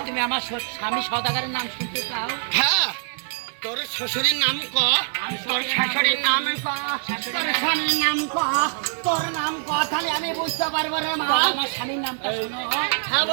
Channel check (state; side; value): silent; left; digital silence